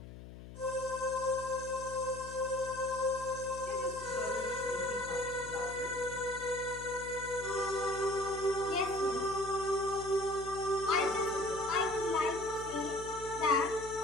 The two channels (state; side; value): noise; left; hum, 14 dB below the sound